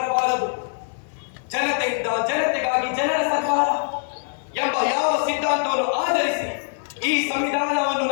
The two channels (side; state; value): right; silent; digital silence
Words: ಜನತೆಯಿಂದ ಜನತೆಗಾಗಿ ಜನರ ಸರ್ಕಾರ ಎಂಬ ಯಾವ ಸಿದ್ಧಾಂತವನ್ನು ಆಧರಿಸಿ ಈ ಸಂವಿಧಾನವನ್ನು